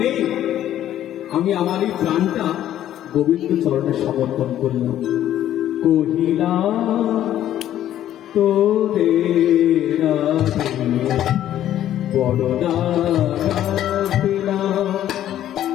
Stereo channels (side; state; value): right; quieter; 11.9 dB